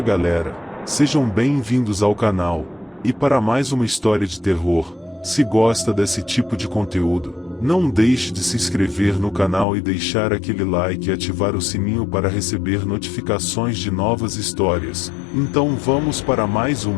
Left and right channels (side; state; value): right; drops out; at 9.7 s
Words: galera, sejam bem-vindos ao canal, e para mais uma história de terror. Se gosta desse tipo de conteúdo, não deixe de se inscrever no canal e deixar aquele like e ativar o sininho para receber notificações de novas histórias. Então vamos para mais